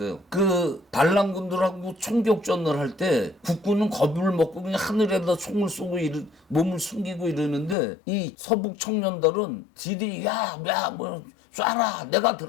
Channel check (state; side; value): drops out; right; at 7.8 s